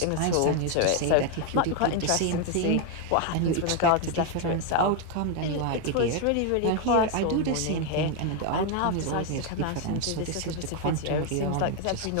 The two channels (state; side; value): different; both; correlation 0.01